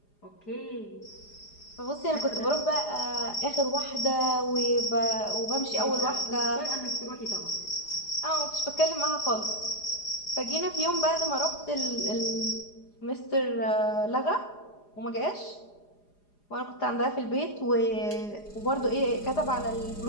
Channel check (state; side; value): late; right; 4.9 ms